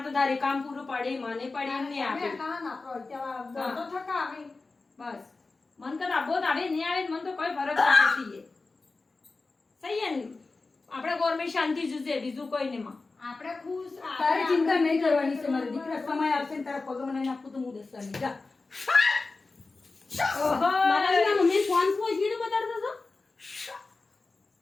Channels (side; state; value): right; quieter; 3.7 dB